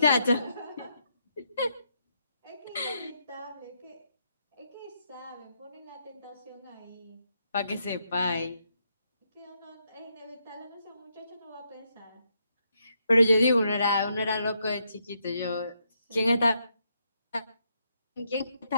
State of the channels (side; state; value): both; inverted; correlation -0.78